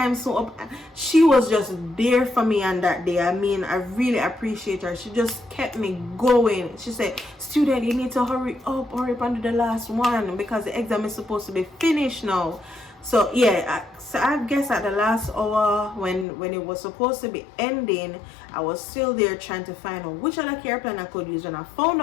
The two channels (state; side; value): drops out; right; at 16.2 s